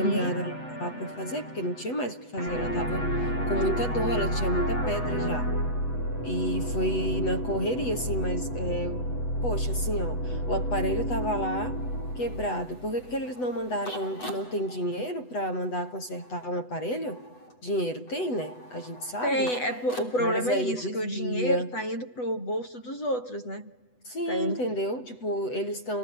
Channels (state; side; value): late; right; 8.1 ms